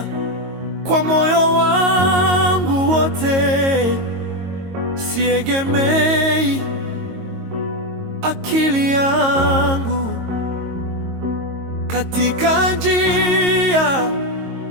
kwa moyo wangu wote, siegemei akili yangu. Katika njia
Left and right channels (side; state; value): left; late; 22 ms